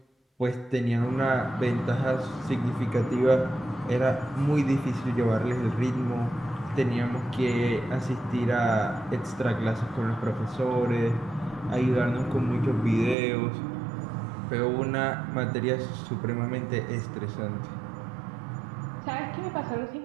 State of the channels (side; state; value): left; drops out; at 13.2 s